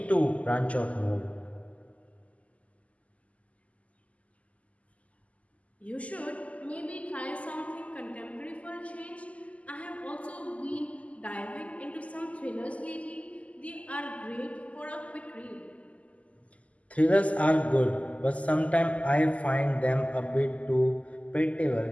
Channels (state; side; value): late; right; 0.068 ms